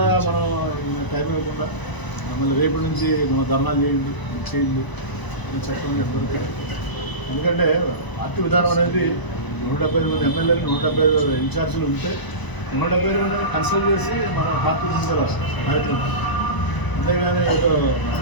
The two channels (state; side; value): late; right; 1.0 ms